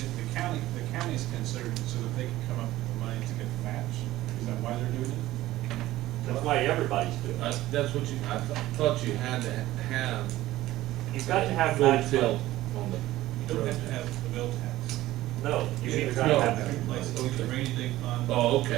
the county's considered so that they can come up with the money to get the match. Is that why they're doing it? That's why everybody's doing it. That's what I thought you had to have. You've got to have full match tilt money. on the. You don't have to have the bill tax. No, you either It's gotta No. have. two places, either rainy day fund. Oh,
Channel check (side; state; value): left; quieter; 15.9 dB